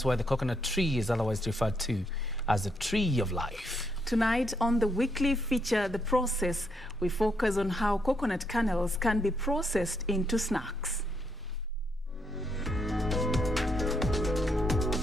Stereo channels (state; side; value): normal; both; correlation 0.77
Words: why the coconut tree is otherwise referred to as the tree of life. Tonight on the weekly feature, The Process, we focus on how coconut kernels can be processed into snacks.